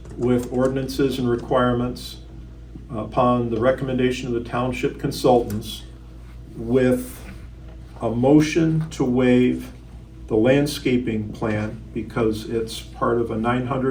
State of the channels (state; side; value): identical; both; correlation 1.00